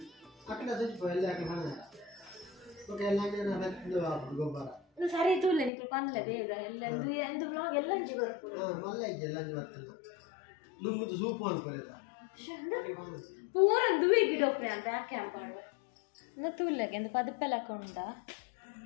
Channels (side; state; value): right; drops out; at 5.7 s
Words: ಸರಿ ತೂಲೆ ನಿಕ್ಲು ಪನ್ಲೆ ಬೇಗ ಎಲ್ಲ ಎಂದು ವ್ಲಾಗ್ ಎಲ್ಲಂಜಿ ಬರ್ಪುಡು ಪೂರ ದುವೆ ಗಿಡ ಒಪ್ಪೆ ಅಂತ ಯಾಕೆ ಅಂಪಾಡು ತೂಲೆಗೆ ಎಂದು ಪದಪ್ಪೆಲ್ಲ ಕೊಂಡ